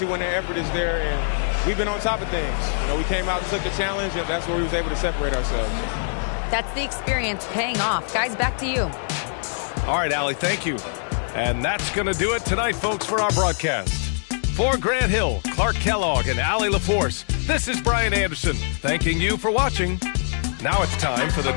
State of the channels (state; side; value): silent; right; 63 dB below the other